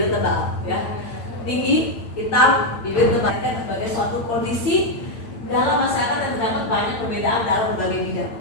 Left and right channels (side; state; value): right; late; 8.8 ms